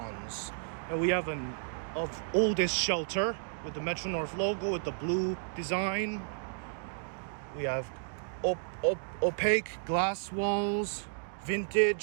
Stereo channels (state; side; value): silent; left; digital silence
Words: And we have an of oldest shelter with the Metro North logo with the blue design. We have opaque glass walls,